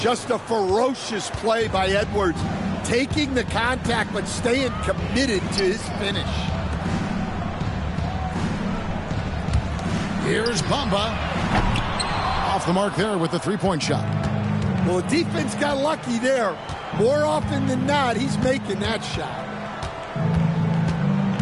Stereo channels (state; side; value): identical; both; correlation 1.00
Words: Just a ferocious play by Edwards. Taking the contact but staying committed to his finish. Here's Bamba. Off the mark there with the three-point shot. Well, the defense got lucky there. More often than not, he's making that shot.